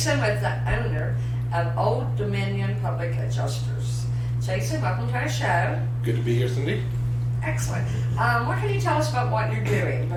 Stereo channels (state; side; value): identical; both; correlation 1.00